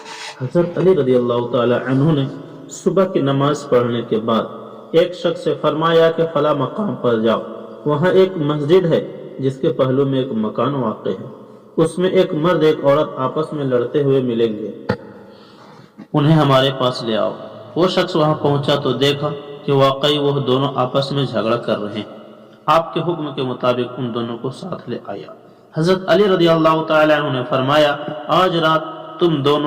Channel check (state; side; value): identical; both; correlation 1.00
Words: حضرت علی رضی اللہ تعالی عنہ نے صبح کی نماز پڑھنے کے بعد ایک شخص سے فرمایا کہ فلاں مقام پر جاؤ، وہاں ایک مسجد ہے جس کے پہلو میں ایک مکان واقع ہے، اس میں ایک مرد ایک عورت آپس میں لڑتے ہوئے ملیں گے، انہیں ہمارے پاس لے آؤ۔ وہ شخص وہاں پہنچا تو دیکھا کہ واقعی وہ دونوں آپس میں جھگڑا کر رہے ہیں۔ آپ کے حکم کے مطابق ان دونوں کو ساتھ لے آیا۔ حضرت علی رضی اللہ تعالی عنہ نے فرمایا، آج رات تم